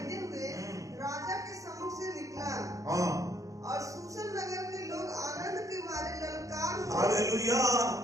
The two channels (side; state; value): left; late; 0.16 ms